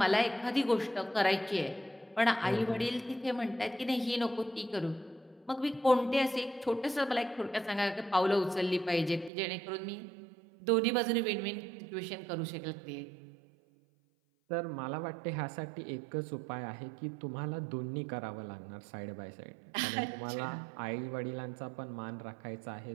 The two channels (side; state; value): left; drops out; at 9.3 s